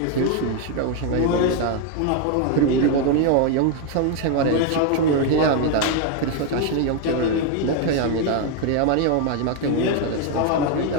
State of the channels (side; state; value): both; different; correlation 0.01